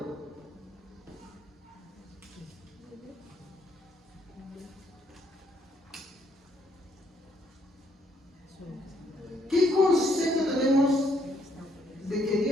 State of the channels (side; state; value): both; normal; correlation 0.70